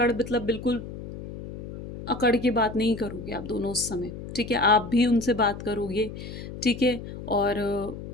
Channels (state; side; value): noise; left; hum, 11 dB below the sound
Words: मतलब बिल्कुल अकड़ के बात नहीं करोगे आप दोनों उस समय, ठीक है? आप भी उनसे बात करोगे, ठीक है? और